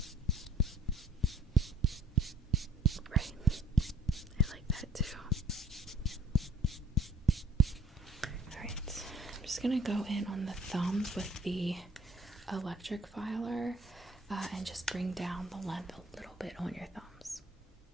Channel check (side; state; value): both; normal; correlation 0.55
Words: Right. I like that too. Alright. I'm just gonna go in on the thumbs with the electric filer and just bring down the length a little bit on your thumbs.